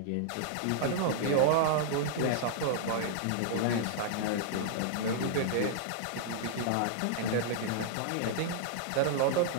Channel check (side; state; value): both; different; correlation -0.01